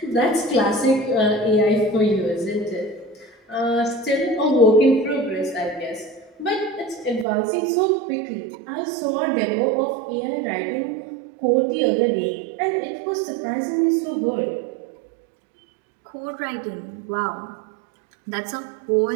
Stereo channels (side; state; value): left; drops out; at 7.2 s